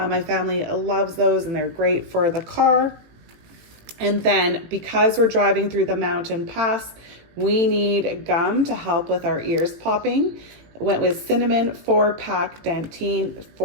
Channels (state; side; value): late; left; 18 ms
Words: family loves those, and they're great for the car. And then because we're driving through the mountain pass, we need gum to help with our ears popping. Went with cinnamon 4-pack Dentine,